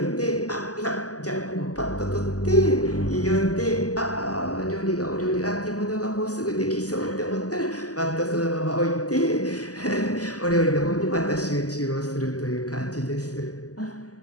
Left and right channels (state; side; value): late; right; 0.67 ms